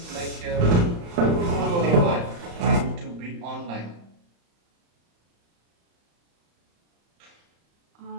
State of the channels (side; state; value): left; late; 35 ms